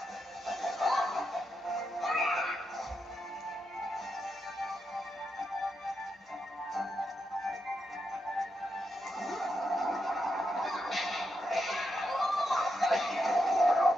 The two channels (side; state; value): both; normal; correlation 0.84